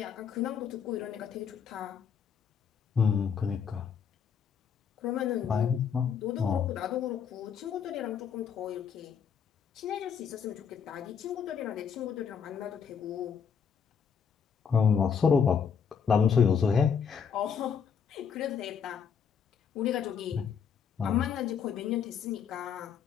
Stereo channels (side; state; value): right; quieter; 7.0 dB